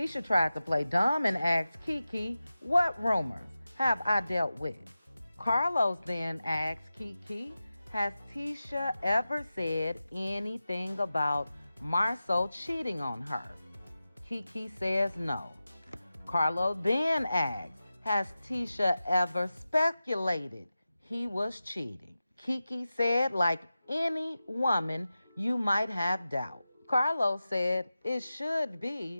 tried to play dumb and asked Kiki, what rumors have I dealt with? Carlos then asked Kiki, has Tisha ever said anything about Marceau cheating on her? Kiki says no. Carlo then asks, has Tisha ever speculated he was cheating? Kiki said, like any woman, you might have doubt. Carlos said it should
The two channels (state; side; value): inverted; both; correlation -0.94